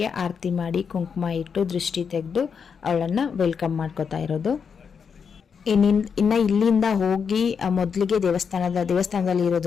ಆರತಿ ಮಾಡಿ ಕುಂಕುಮ ಇಟ್ಟು ದೃಷ್ಟಿ ತೆಗೆದು ಅವಳನ್ನ ವೆಲ್ಕಮ್ ಮಾಡ್ಕೋತಾ ಇರೋದು. ಇನ್ನ ಇಲ್ಲಿಂದ ಹೋಗಿ ಮೊದಲಿಗೆ ದೇವಸ್ಥಾನದಲ್ಲಿ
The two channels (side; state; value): right; quieter; 6.4 dB